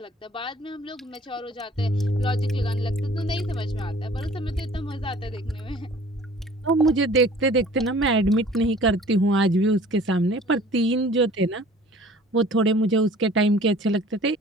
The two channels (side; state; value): both; normal; correlation 0.50